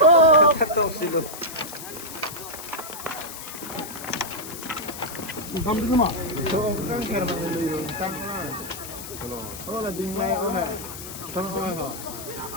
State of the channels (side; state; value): left; noise; hiss, 11 dB below the sound